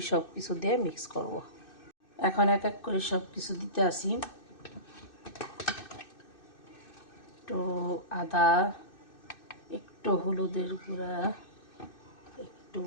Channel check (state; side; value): late; right; 2.6 ms